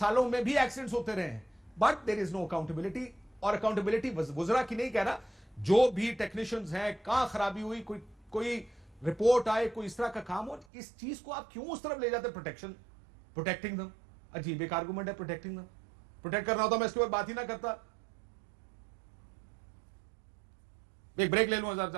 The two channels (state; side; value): drops out; left; at 10.7 s